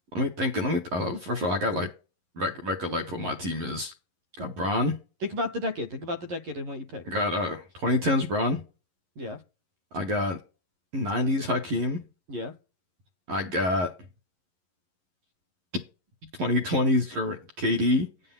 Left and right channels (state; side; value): late; left; 11 ms